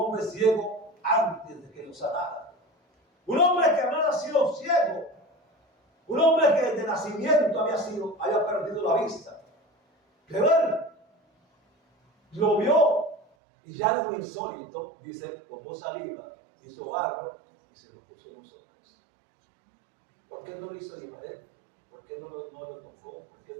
ciego antes de que lo sanara. Un hombre que había nacido ciego. Un hombre que desde nacimiento había perdido la vista. Pero él lo vio y ya es lo insólito. Dice, tomó saliva, hizo barro y se lo puso en los ojos. ¿Por qué no lo hizo Ibadet? ¿Por qué no lo tocó? ¿Por qué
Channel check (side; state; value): left; drops out; at 13.2 s